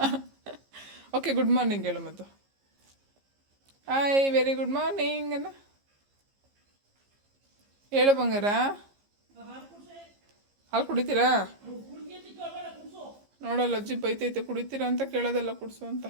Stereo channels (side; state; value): left; late; 15 ms